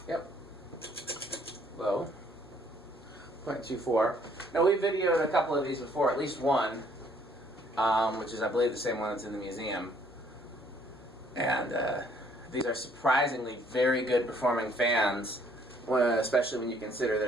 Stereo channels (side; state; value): both; normal; correlation 0.63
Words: Yep. Low. 0.24. Now, we videoed a couple of these before, at least one, which is, I believe, the same one that's in the museum. And these are surprisingly very good performing fans, especially when you consider